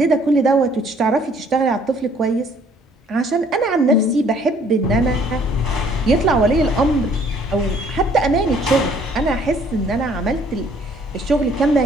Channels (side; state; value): both; normal; correlation 0.60